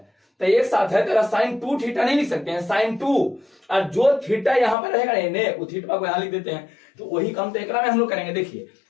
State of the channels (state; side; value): drops out; right; at 4.8 s